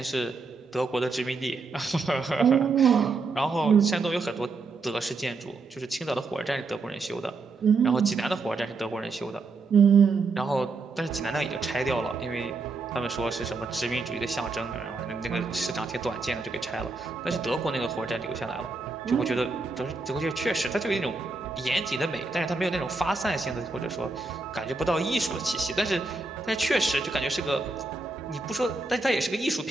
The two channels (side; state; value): left; quieter; 3.9 dB